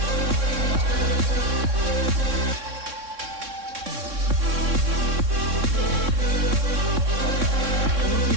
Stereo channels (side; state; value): left; late; 3.6 ms